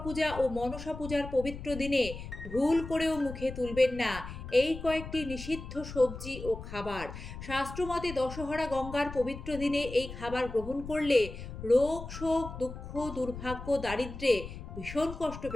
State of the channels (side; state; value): left; noise; rumble, 10 dB below the sound